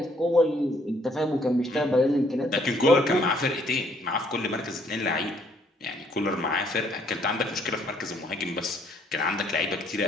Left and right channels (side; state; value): both; normal; correlation 0.66